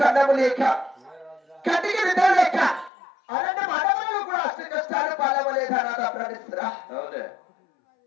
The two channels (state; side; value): drops out; right; at 2.9 s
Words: లేక కంటికి నిద్ర లేక అరణ్యం అడవులలో కూడా అష్ట కష్టాలు పాలవలేదా నాదా ప్రణిస్తురా?